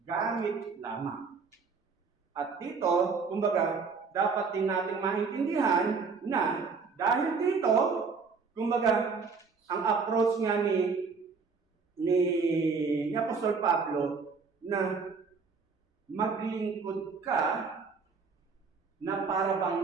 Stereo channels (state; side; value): quieter; left; 5.0 dB